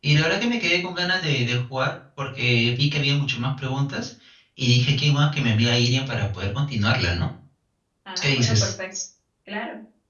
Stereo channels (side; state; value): both; identical; correlation 1.00